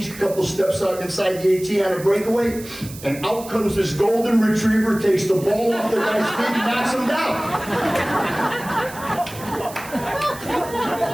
a couple steps out inside the 18 on a breakaway, and out comes this golden retriever, takes the ball off the guy's feet and knocks him down.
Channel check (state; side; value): noise; right; hiss, 16 dB below the sound